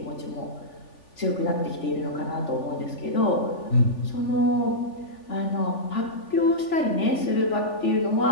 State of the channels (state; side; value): late; right; 3.4 ms